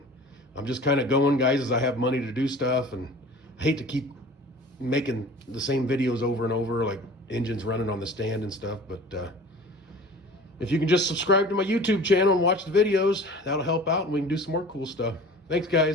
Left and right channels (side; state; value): both; normal; correlation 0.42